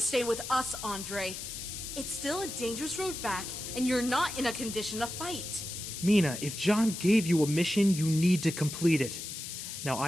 with us, Andre. It's still a dangerous road back, and you're not in a condition to fight. Mina, if John gave you a mission, you need to complete it. Now,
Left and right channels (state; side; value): noise; left; hiss, 8 dB below the sound